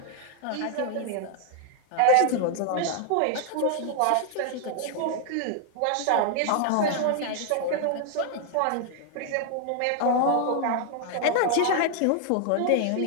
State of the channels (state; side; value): different; both; correlation 0.00